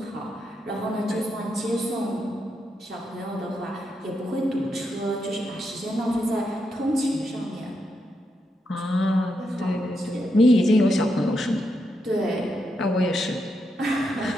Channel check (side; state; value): both; normal; correlation 0.83